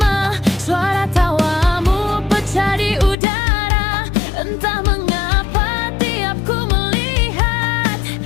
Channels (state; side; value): drops out; right; at 3.2 s